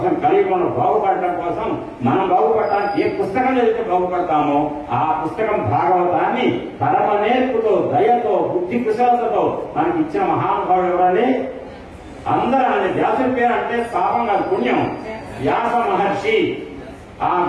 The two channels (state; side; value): identical; both; correlation 1.00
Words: కలియుగంలో బాగుపడటం కోసం, మనం బాగుపడటానికి ఏ పుస్తకం చదివితే బాగుపడతామో ఆ పుస్తకం భాగవతాన్ని పరమ నేర్పుతో, దయతో, బుద్ధి కుశలతతో మనకి ఇచ్చిన మహానుభావుడు ఎవరండి? అందరూ ఆయన వ్యాసుడి పేరు అంటే పాపం కాదు, పుణ్యం. వ్యాస మహర్షి. ఆ